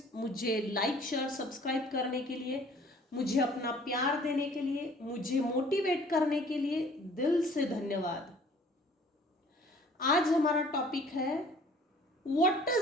मुझे लाइक शेयर सब्सक्राइब करने के लिए, मुझे अपना प्यार देने के लिए, मुझे मोटिवेट करने के लिए दिल से धन्यवाद। आज हमारा टॉपिक है what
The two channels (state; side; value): normal; both; correlation 0.53